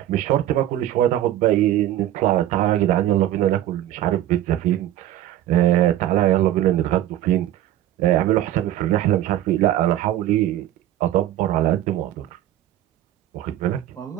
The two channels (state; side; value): quieter; left; 12.7 dB